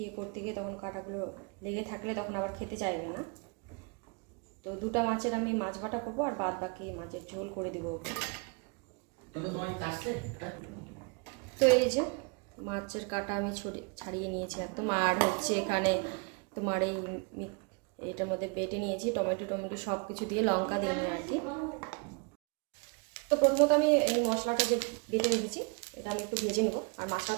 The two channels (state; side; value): quieter; left; 32.3 dB